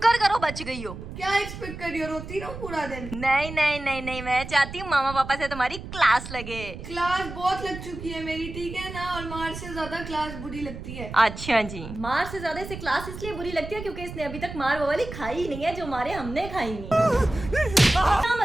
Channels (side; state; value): right; noise; rumble, 10 dB below the sound